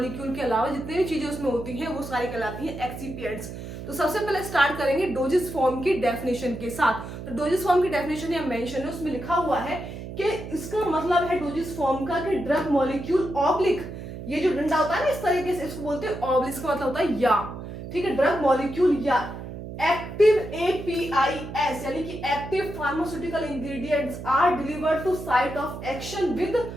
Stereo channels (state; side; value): noise; right; hum, 10 dB below the sound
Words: के अलावा जितनी भी चीजें उसमें होती हैं वो सारी कहलाती हैं एक्सिपिएंट्स। तो सबसे पहले स्टार्ट करेंगे डोजेस फॉर्म की डेफिनेशन के साथ। तो डोजेस फॉर्म की डेफिनेशन या मेंशन है, उसमें लिखा हुआ है कि इसका मतलब है डोजेस फॉर्म का कि ड्रग मॉलिक्यूल ऑब्लिक, ये जो डंडा होता है ना इस तरीके से, इसको बोलते हैं ऑब्लिक, इसका मतलब होता है या, ठीक है, ड्रग मॉलिक्यूल या एक्टिव एपीआईएस यानी कि active pharmaceutical ingredients are delivered to site of action with